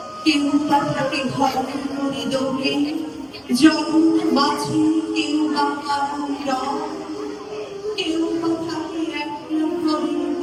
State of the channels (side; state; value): both; identical; correlation 1.00